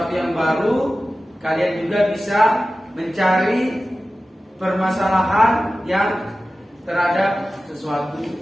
yang baru, kalian juga bisa mencari permasalahan yang terhadap sesuatu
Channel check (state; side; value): normal; both; correlation 0.95